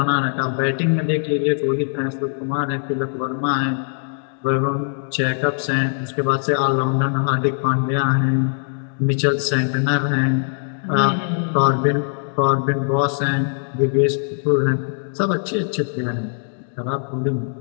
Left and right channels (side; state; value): right; silent; digital silence